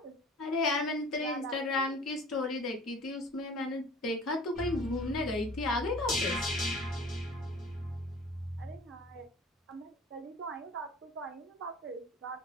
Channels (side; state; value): both; normal; correlation 0.45